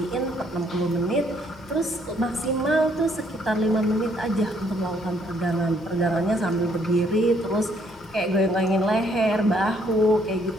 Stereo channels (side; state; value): both; normal; correlation 0.68